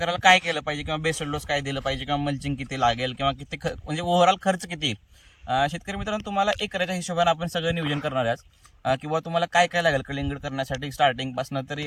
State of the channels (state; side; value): identical; both; correlation 1.00